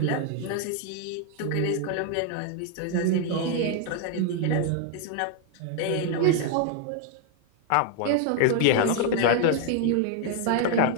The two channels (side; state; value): both; different; correlation 0.00